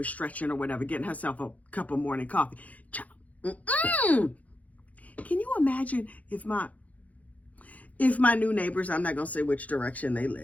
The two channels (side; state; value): right; late; 0.071 ms